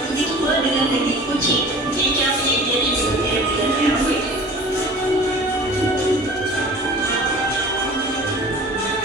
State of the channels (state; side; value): normal; both; correlation 0.42